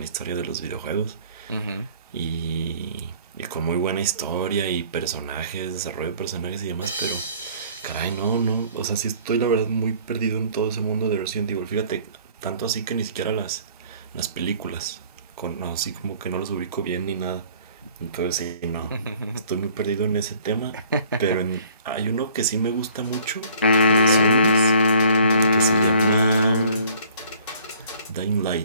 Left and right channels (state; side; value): inverted; both; correlation -0.54